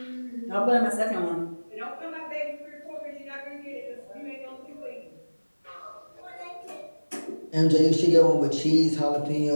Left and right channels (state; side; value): inverted; both; correlation -1.00